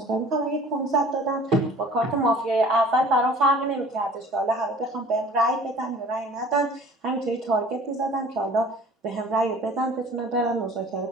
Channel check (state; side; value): normal; both; correlation 0.47